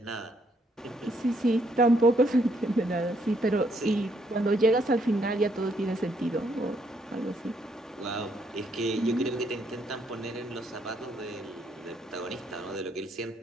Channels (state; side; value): normal; both; correlation 0.71